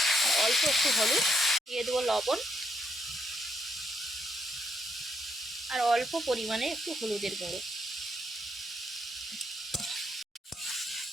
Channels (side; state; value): both; normal; correlation 0.76